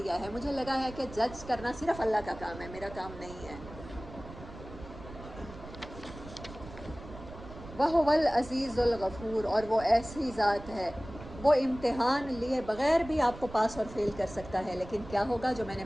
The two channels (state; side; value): noise; right; rumble, 15 dB below the sound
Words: ہے. مجھے لگا ہے کہ جج کرنا صرف اللہ کا کام ہے، میرا کام نہیں ہے. وَهُوَ الْعَزِيزُ الْغَفُورُ، اور وہ ایسی ذات ہے، وہ امتحان لیے بغیر بھی آپ کو پاس اور فیل کر سکتا ہے. لیکن کیا ہوگا، جو میں نے